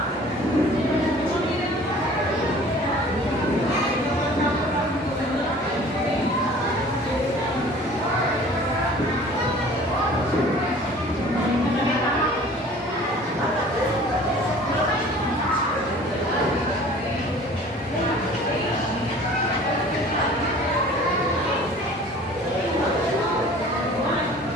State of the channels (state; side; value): normal; both; correlation 0.47